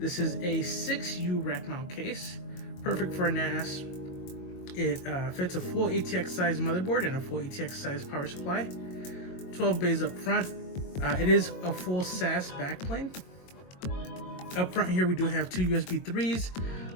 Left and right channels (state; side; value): late; right; 22 ms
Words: is a 6U rack mount case, perfect for a NAS. It fits a full ATX size motherboard and a full ATX size power supply. 12 bays up front. It is a full SAS backplane. Up front here we do have two USB 3s,